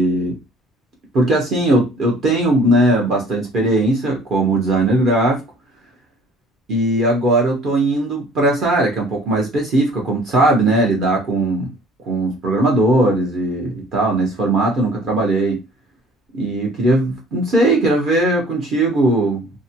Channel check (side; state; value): both; normal; correlation 0.53